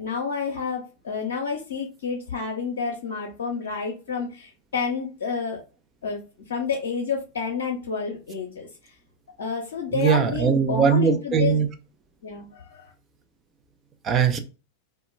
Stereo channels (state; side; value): normal; both; correlation -0.01